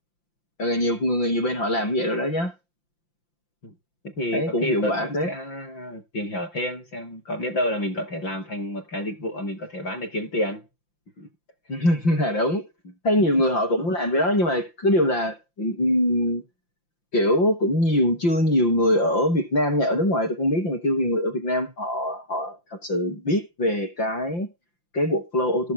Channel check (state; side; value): late; right; 5.8 ms